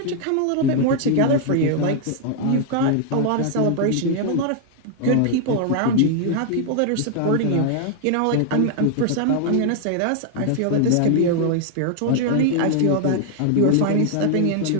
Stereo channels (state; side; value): different; both; correlation 0.00